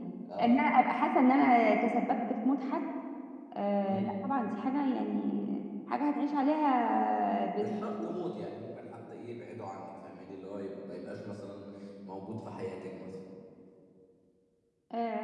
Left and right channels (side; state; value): both; identical; correlation 1.00